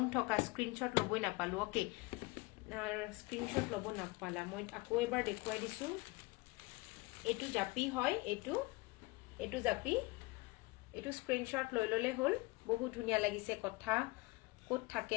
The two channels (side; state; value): right; quieter; 23.8 dB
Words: থকা স্ক্ৰিনশ্বট ল'বই নাপালো। ওকে, স্ক্ৰিনশ্বট ল'ব নাপালা, মই আকৌ এবাৰ দেখুৱাই দিছো। এইটো জাপি হয়, এইটো জাপি, এইটো স্ক্ৰিনশ্বট লৈ ললে হ'ল। বহুত ধুনীয়া লাগিছে। কথা ক'ত থাকে